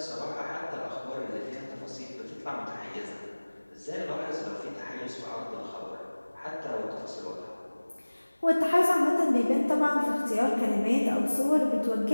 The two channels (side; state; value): both; inverted; correlation -1.00